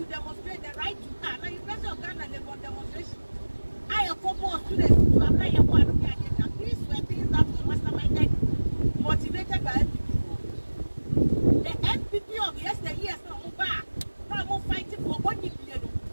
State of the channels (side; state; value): both; inverted; correlation -1.00